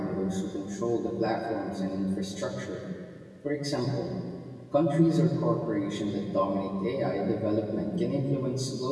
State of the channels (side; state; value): both; identical; correlation 1.00